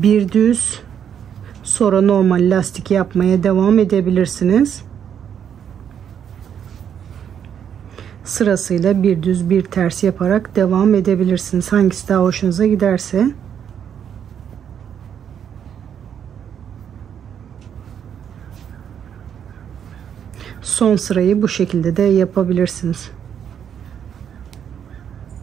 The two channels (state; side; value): quieter; left; 8.5 dB